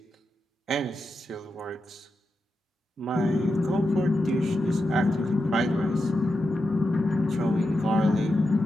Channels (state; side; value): normal; both; correlation 0.88